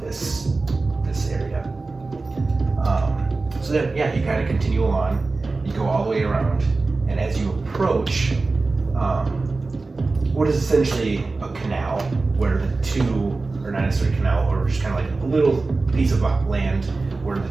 this area. So then, yeah, you kind of continue along. You go all the way around, and as you approach, what is essentially a canal, where the two, or not necessarily a canal, or just kind of like a little piece of land where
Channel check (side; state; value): left; quieter; 3.6 dB